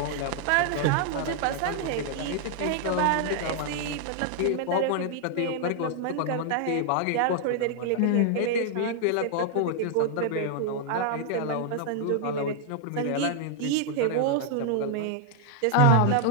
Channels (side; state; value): both; different; correlation 0.00